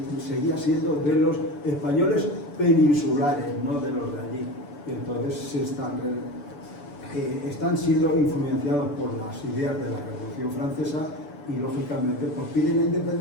siendo de los españoles peninsulares, no de los de allí. Entonces están siendo influenciados por las ideas de la Revolución Francesa y, lógicamente, pues piden la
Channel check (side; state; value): right; late; 6.9 ms